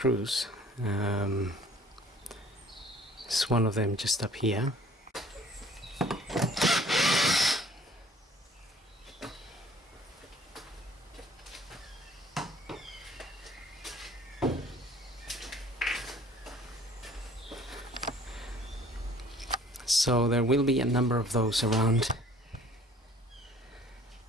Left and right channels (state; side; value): normal; both; correlation 0.53